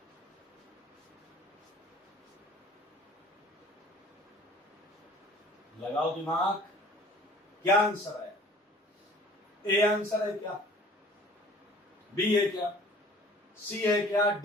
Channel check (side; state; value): both; normal; correlation 0.49